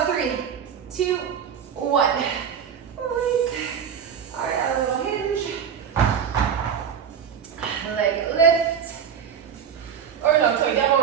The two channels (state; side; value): quieter; left; 7.9 dB